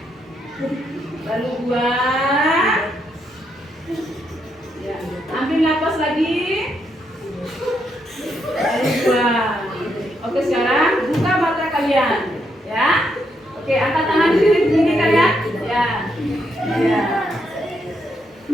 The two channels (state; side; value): normal; both; correlation 0.78